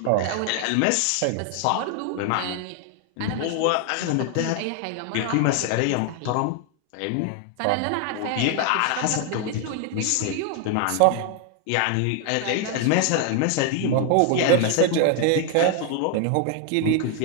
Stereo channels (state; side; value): different; both; correlation 0.00